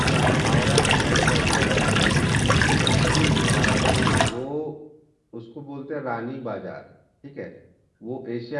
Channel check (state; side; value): identical; both; correlation 1.00